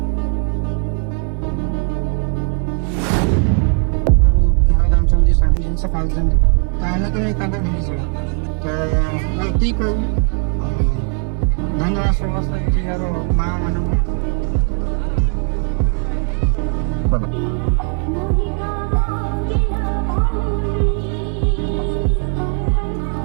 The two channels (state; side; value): quieter; left; 38.5 dB